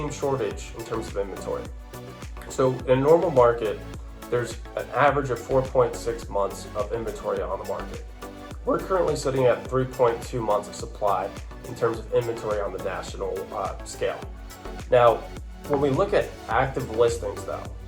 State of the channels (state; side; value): identical; both; correlation 1.00